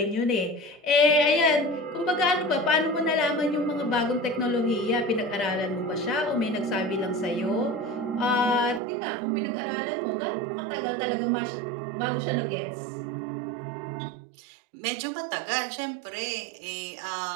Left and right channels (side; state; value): left; drops out; at 8.8 s